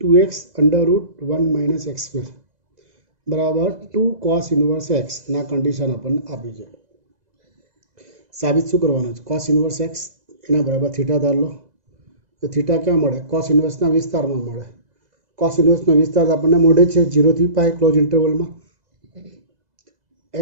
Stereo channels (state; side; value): late; left; 2.0 ms